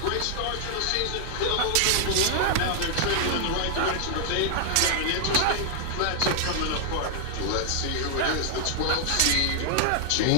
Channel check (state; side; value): different; both; correlation -0.01